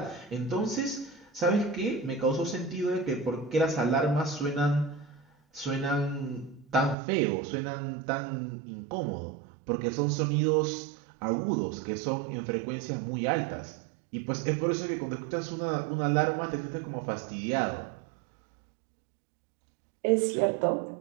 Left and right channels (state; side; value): drops out; left; at 7.0 s